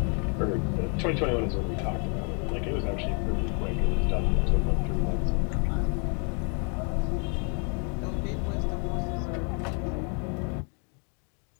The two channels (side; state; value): right; quieter; 38.1 dB